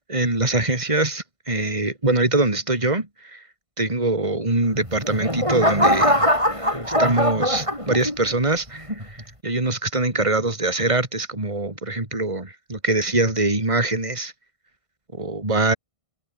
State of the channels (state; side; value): late; left; 1.6 ms